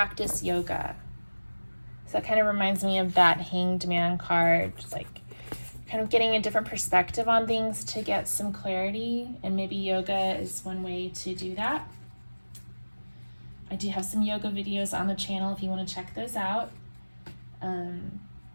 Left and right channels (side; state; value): both; inverted; correlation -1.00